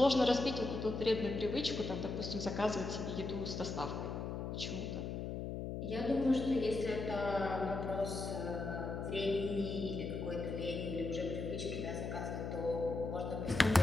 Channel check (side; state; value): left; noise; hum, 4 dB below the sound